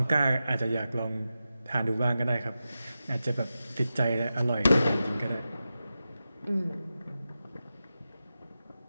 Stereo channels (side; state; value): both; inverted; correlation -0.92